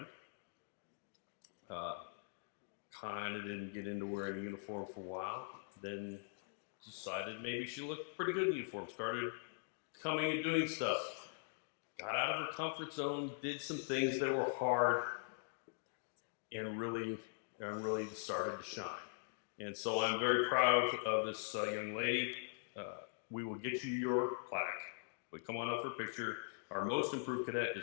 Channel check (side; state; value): right; silent; digital silence